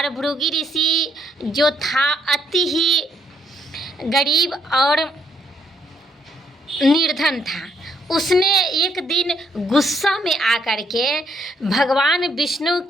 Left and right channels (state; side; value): normal; both; correlation 0.72